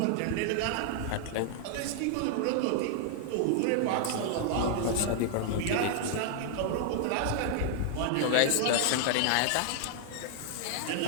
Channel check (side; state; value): both; different; correlation 0.00